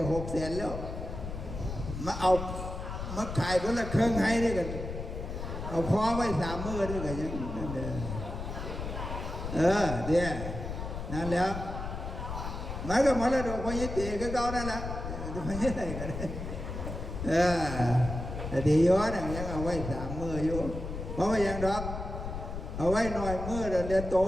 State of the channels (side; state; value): left; noise; rumble, 6 dB below the sound